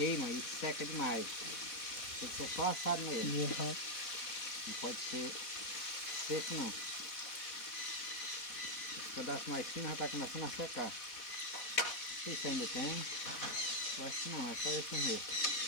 e seca demais. Tem que ser só assado mesmo. Não pode ser seco não. Esse pedaço mais fino já está começando a secar. Não sei se ainda tem. Eu acho que não, é só esse mesmo.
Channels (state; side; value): late; right; 4.1 ms